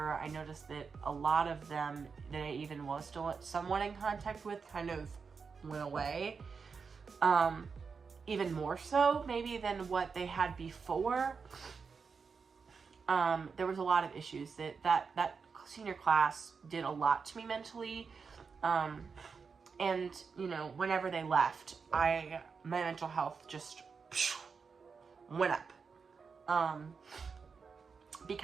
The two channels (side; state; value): left; quieter; 5.4 dB